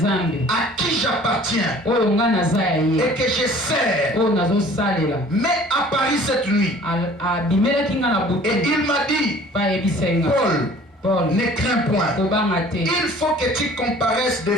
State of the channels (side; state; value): both; normal; correlation 0.50